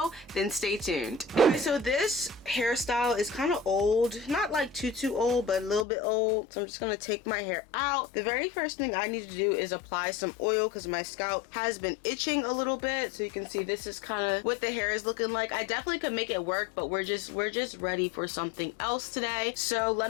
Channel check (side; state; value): right; drops out; at 5.9 s